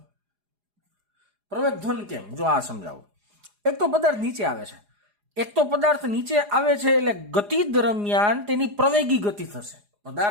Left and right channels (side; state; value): left; late; 4.9 ms